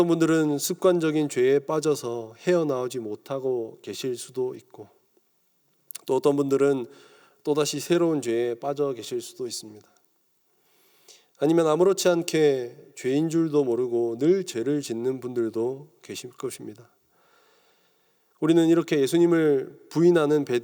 분들은 습관적인 죄에 빠져서 헤어나오지 못하고 계실 수도 있고, 또 어떤 분들은 또다시 새로운 죄에 빠져 계실 수도 있습니다. 아니면 아무렇지 않게 죄인 줄도 모르고 늘 죄를 짓는 분들도 계실 것입니다. 우리는 이렇게 예수님을 부인하는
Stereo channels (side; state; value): both; identical; correlation 1.00